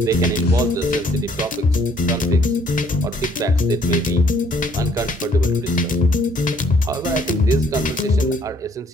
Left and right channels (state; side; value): normal; both; correlation 0.63